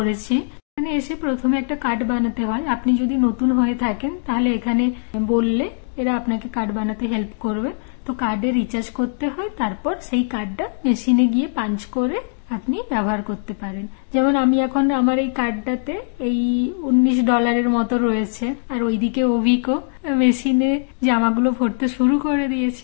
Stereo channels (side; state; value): right; silent; 65 dB below the other